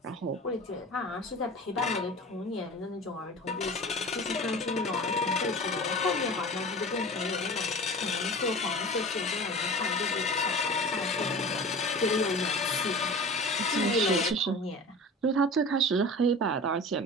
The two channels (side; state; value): both; normal; correlation 0.37